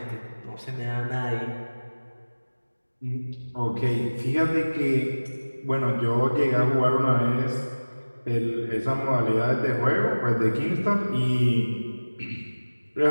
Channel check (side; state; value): both; inverted; correlation -1.00